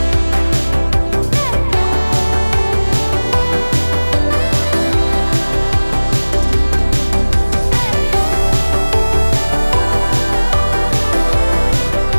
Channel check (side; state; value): both; inverted; correlation -1.00